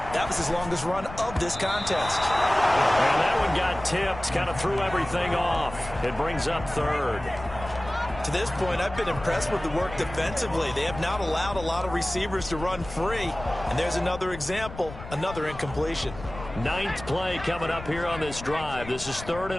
was his longest run of this contest. And that one got tipped, kind of threw everything off. It brings up 3rd. To this point, I've been impressed with the work defensively. They have not allowed a lot of receivers to run free. And there's another example, another incompletion. 9th play coming up here on this drive. This is 3rd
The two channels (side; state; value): left; noise; rumble, 13 dB below the sound